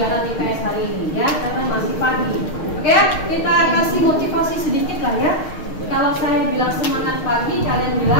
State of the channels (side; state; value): right; late; 6.5 ms